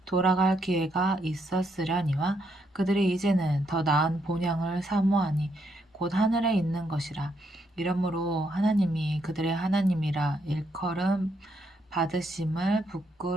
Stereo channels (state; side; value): normal; both; correlation 0.76